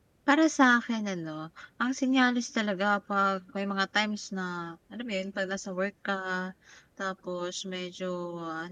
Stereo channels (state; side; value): identical; both; correlation 1.00